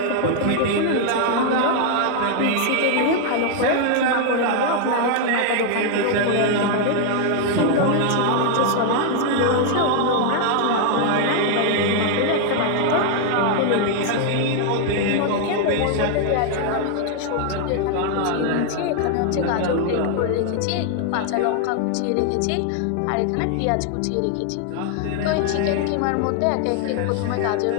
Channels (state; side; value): different; both; correlation 0.00